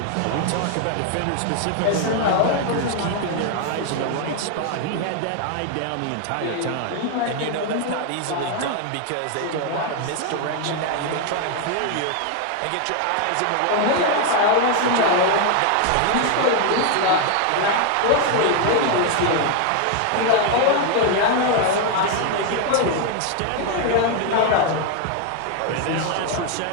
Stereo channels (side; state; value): both; different; correlation 0.00